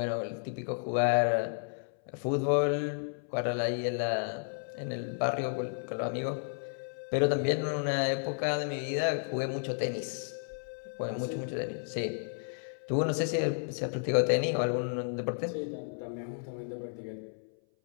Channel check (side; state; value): right; silent; 56 dB below the other